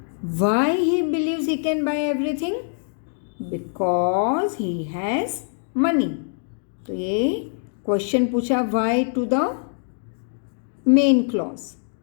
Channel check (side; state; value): right; silent; digital silence